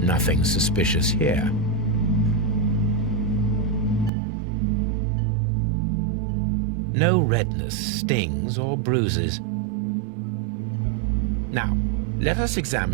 suspicious here. No redness, stings, or bruises. Now, let us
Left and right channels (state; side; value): drops out; left; at 4.1 s